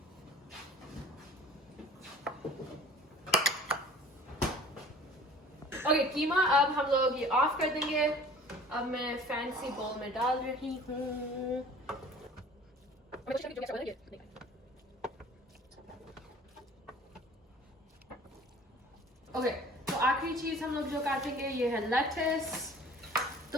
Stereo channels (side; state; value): both; normal; correlation 0.47